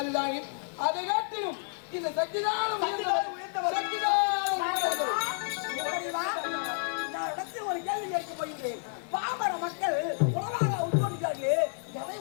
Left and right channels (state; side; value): silent; right; 58 dB below the other